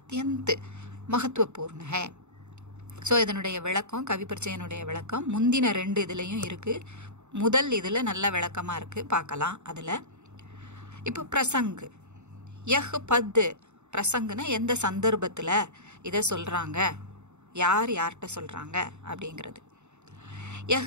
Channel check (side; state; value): left; late; 0.83 ms